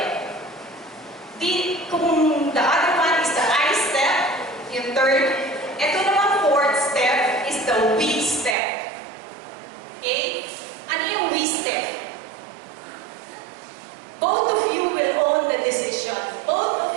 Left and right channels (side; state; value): left; drops out; at 8.6 s